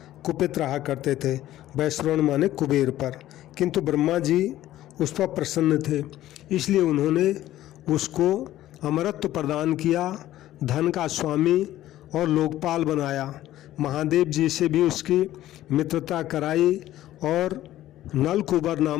कुपित रहा करते थे। वैश्रवण माने कुबेर पर, किंतु ब्रह्मा जी उस पर प्रसन्न थे, इसलिए उन्होंने उसको अमरत्व प्रदान किया, धन का स्वामी और लोकपाल बनाया। महादेव जी से भी उसकी मित्रता कराई और नलकुबर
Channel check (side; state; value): right; quieter; 14.0 dB